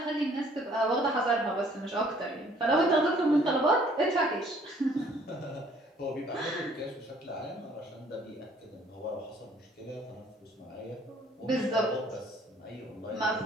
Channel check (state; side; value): normal; both; correlation 0.59